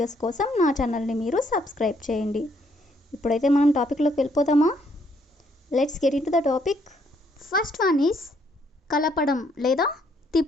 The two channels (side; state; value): both; normal; correlation 0.69